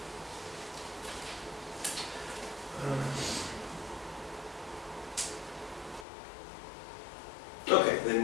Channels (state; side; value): drops out; right; at 6.1 s